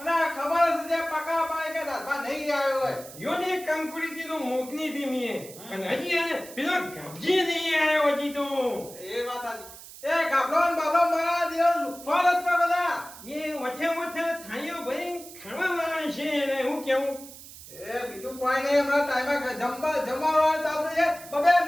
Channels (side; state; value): right; noise; hiss, 16 dB below the sound